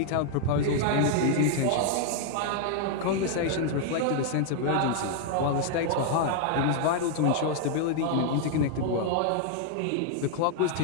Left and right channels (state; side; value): different; both; correlation 0.00